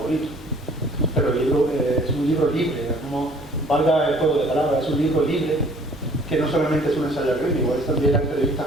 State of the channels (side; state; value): both; normal; correlation 0.55